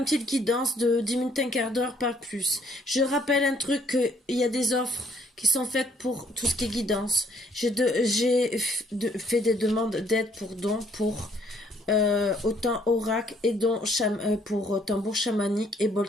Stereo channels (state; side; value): normal; both; correlation 0.65